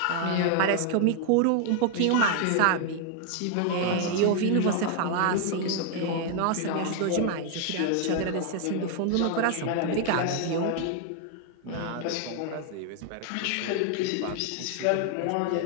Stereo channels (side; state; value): both; different; correlation 0.00